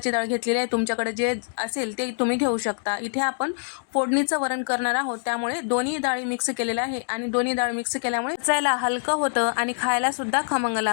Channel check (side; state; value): right; silent; digital silence